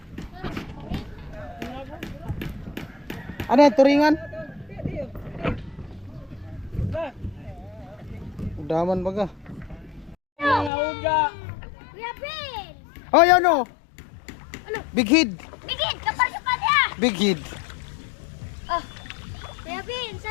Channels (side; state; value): right; drops out; at 10.7 s